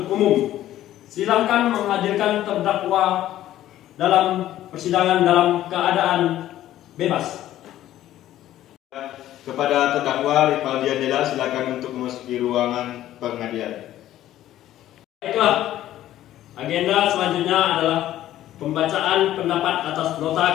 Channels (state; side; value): quieter; right; 13.2 dB